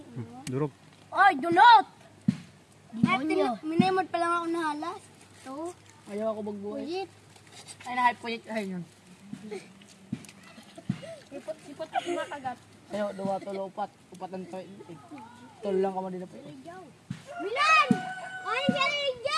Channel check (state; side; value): identical; both; correlation 1.00